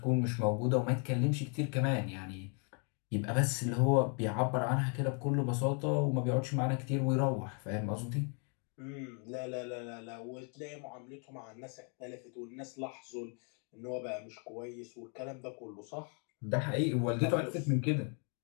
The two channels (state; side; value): quieter; right; 39.7 dB